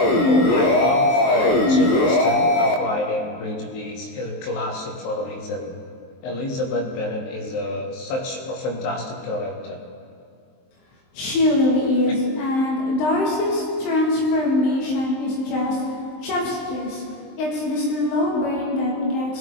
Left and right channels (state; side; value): late; right; 23 ms